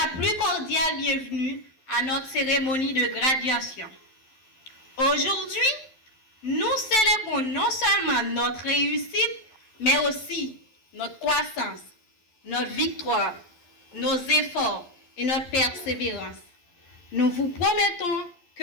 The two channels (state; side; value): late; right; 11 ms